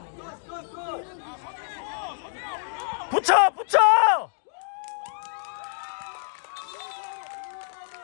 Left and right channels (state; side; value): silent; right; digital silence